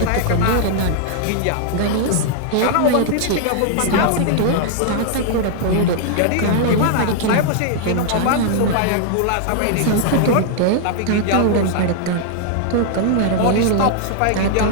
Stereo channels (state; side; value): different; both; correlation -0.01